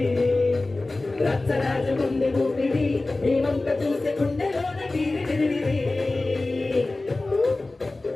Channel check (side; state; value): right; quieter; 3.1 dB